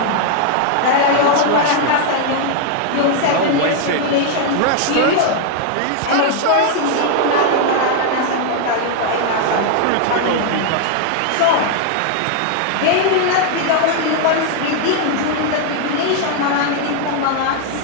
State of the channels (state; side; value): different; both; correlation 0.00